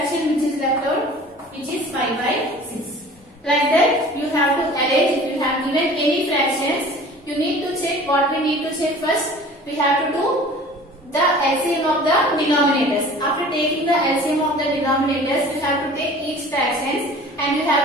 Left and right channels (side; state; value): both; normal; correlation 0.45